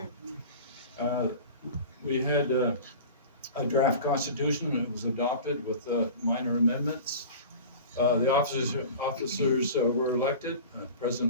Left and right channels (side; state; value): both; inverted; correlation -0.37